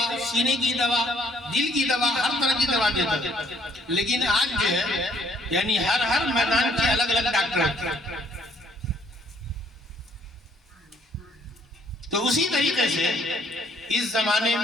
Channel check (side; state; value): both; normal; correlation 0.64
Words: سینے کی دوا، دل کی دوا، ہر طرح کی دوا دیتا تھا۔ لیکن آج جو ہے یعنی ہر میدان کے الگ الگ ڈاکٹر ہیں۔ تو اسی طریقے سے اس زمانے